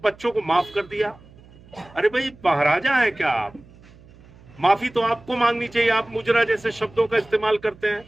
बच्चों को माफ कर दिया। अरे भाई, महाराजा है क्या आप? माफी तो आपको मांगनी चाहिए। आप मुजरा जैसे शब्दों का इस्तेमाल करते हैं।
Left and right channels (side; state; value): right; noise; hum, 24 dB below the sound